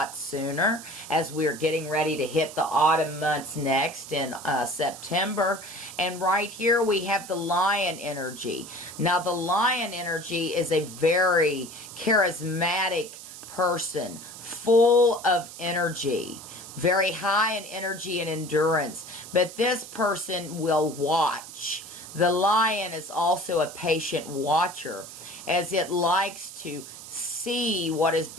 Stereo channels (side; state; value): right; noise; hiss, 14 dB below the sound